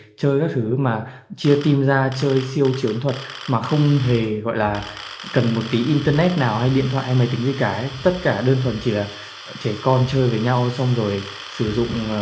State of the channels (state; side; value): identical; both; correlation 1.00